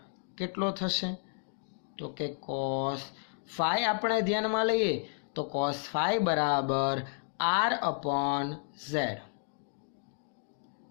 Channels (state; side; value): silent; right; digital silence